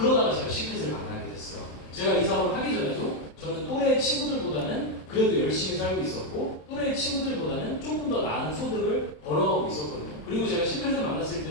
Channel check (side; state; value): right; late; 27 ms